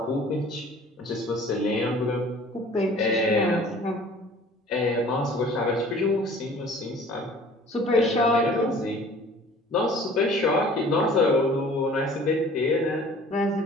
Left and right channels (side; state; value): both; normal; correlation 0.49